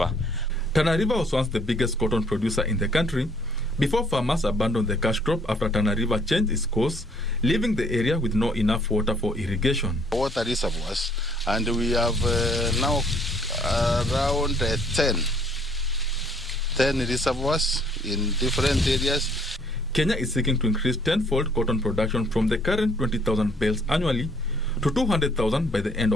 Tana River was once the biggest cotton producer in the country before farmers abandoned the cash crop after Tana River changed its course, leaving the area with no enough water for irrigation. Water reservoirs, and we have now around 10 reservoirs in different areas. Kenya is seeking to increase 10-fold cotton production from the current 20,000 bales annually to 200,000 by the end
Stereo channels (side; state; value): both; normal; correlation 0.63